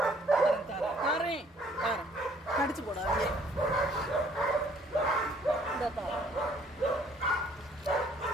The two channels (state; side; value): normal; both; correlation 0.60